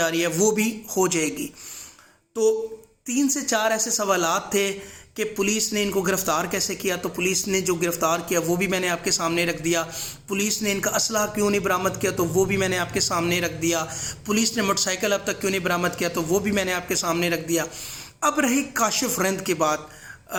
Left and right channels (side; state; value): both; identical; correlation 1.00